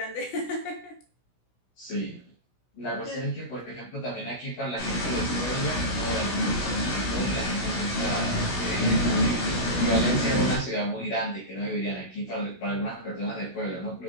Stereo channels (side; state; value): right; late; 16 ms